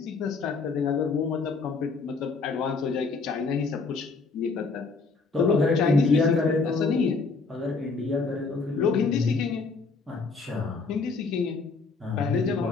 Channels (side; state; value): right; quieter; 4.3 dB